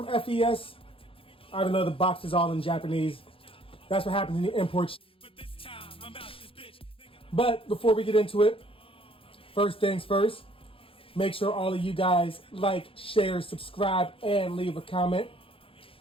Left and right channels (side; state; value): right; late; 0.26 ms